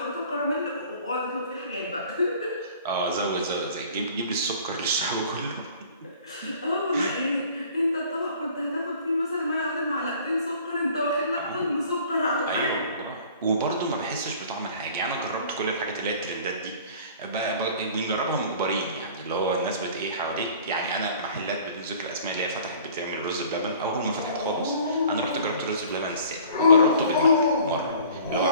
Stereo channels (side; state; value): both; inverted; correlation -0.49